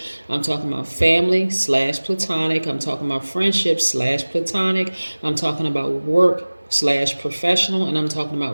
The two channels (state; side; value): inverted; both; correlation -1.00